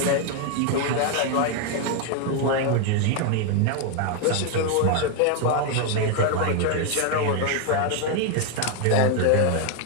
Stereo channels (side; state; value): both; different; correlation 0.01